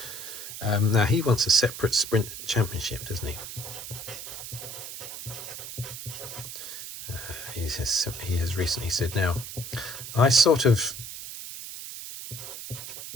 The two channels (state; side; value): noise; right; hiss, 9 dB below the sound